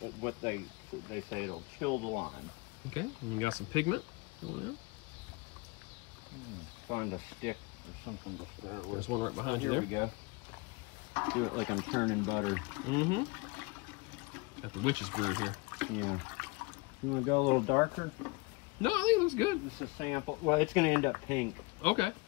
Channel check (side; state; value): right; quieter; 25.2 dB